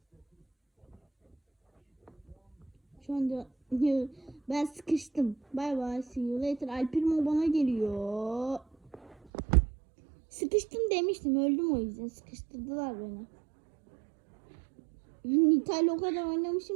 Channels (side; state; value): left; drops out; at 9.2 s